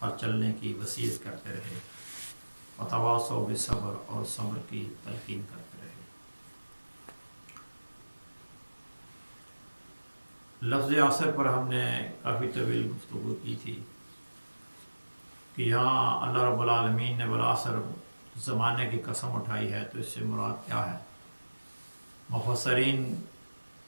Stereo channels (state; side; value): inverted; both; correlation -1.00